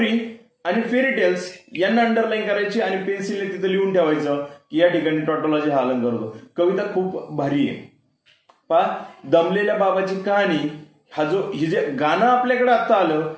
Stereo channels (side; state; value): both; identical; correlation 1.00